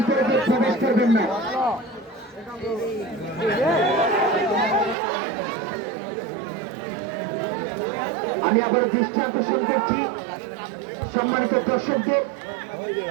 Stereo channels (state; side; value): drops out; left; at 5.0 s